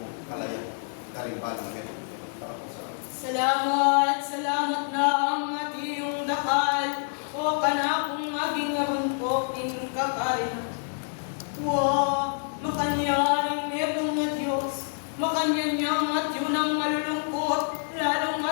kalaya karimbalang Petro. Salamat na ang atiyong dakal, o kanakong maging narumpok ing kakarin. Makanyaring merong na Diyos, makanyanyang at yun ang malulungkot, lalong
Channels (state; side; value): silent; right; digital silence